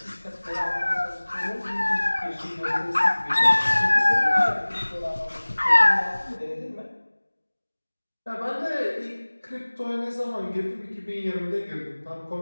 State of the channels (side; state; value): both; inverted; correlation -1.00